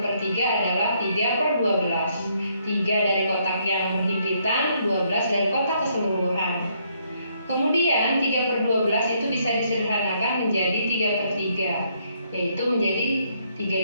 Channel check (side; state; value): both; inverted; correlation -0.71